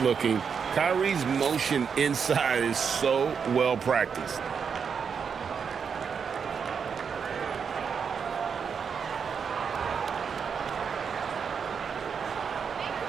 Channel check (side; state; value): left; quieter; 6.5 dB